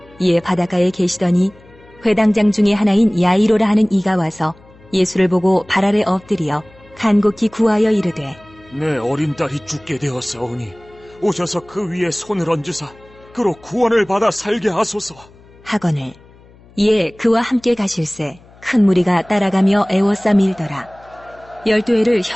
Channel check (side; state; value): left; noise; hum, 26 dB below the sound